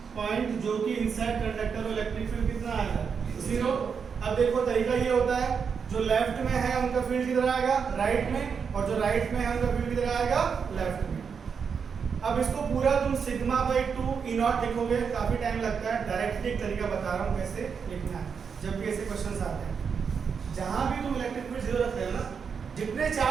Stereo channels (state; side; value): quieter; left; 6.3 dB